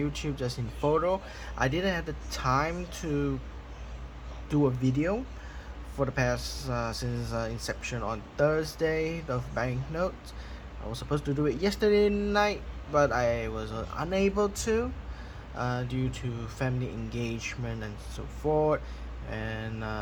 just in photo. I didn't have the time to do a video for the past since inception on Thursday of banknotes. I was supposed to do it yesterday night, but I was unable to due to family engagement and so forth. And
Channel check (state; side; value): identical; both; correlation 1.00